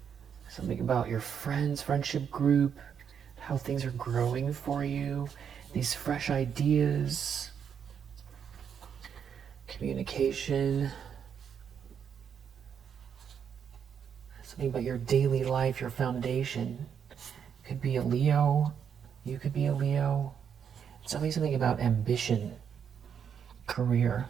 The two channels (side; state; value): left; quieter; 7.7 dB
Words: Something about your friends, friendship group, how things are growing for you. These fresh ideas. Communication. Something about your daily life, your foundation. Could be a Leo. You could be a Leo. Something about ambition, career.